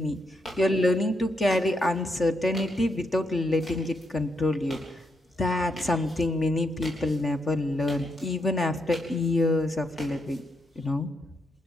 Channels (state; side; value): normal; both; correlation 0.79